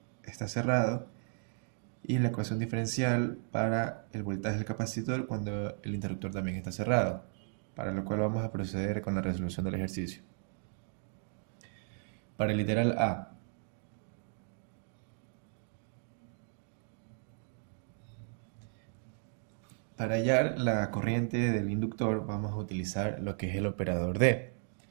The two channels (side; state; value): left; silent; 54 dB below the other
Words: está cerrado y la ecuación diferencial para el voltaje del capacitor cuando el interruptor también está cerrado, para lo cual vamos a proceder con la resolución del ejercicio. Para el literal A, para hallar la corriente del inductor vamos a utilizar lo que es el operador D.